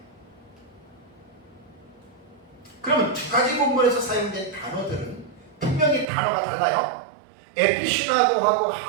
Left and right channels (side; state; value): left; drops out; at 6.1 s